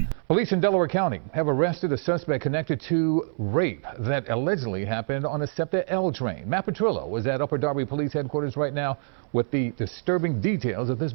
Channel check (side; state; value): left; silent; 61 dB below the other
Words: Police in Delaware County have arrested a suspect connected to rape that allegedly happened on a SEPTA L train. Matt Petrillo was at Upper Darby Police Headquarters right now with the disturbing details of this